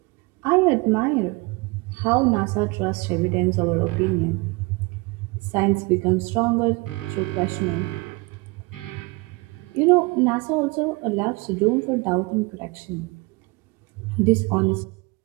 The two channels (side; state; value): left; quieter; 26.0 dB